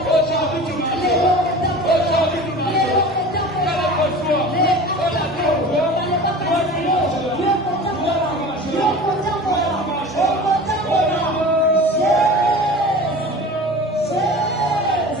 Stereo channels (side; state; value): both; normal; correlation 0.37